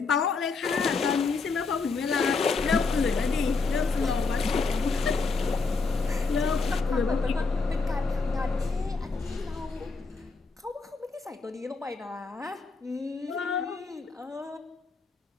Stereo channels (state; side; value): quieter; right; 4.3 dB